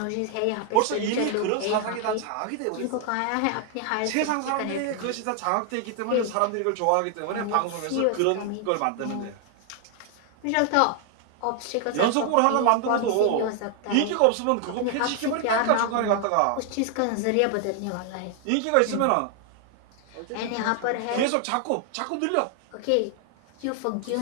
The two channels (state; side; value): different; both; correlation 0.00